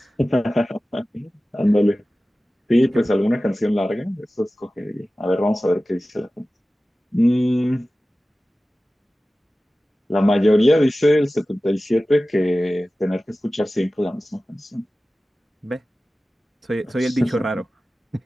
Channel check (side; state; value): both; normal; correlation 0.96